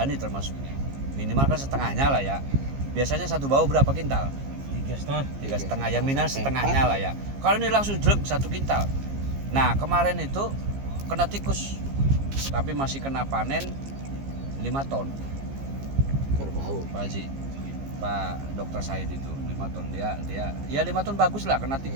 termasuknya. Minimal kan setengahnya lah ya. Biasanya satu bau berapa kintal? 3,5 ya, minus setengahnya lah ya. Kalau ini langsung jelek 1 kintal. Nah, kemarin itu kena tikus, tapi masih kena panen 5 ton. Berbau. Pak Haji, Pak Dokter Syahid itu 5 ton, dia ya 5 ton bagus lah, kena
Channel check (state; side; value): late; left; 15 ms